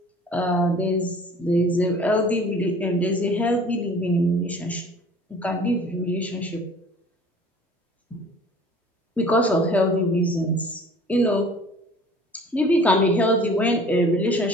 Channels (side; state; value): both; normal; correlation 0.48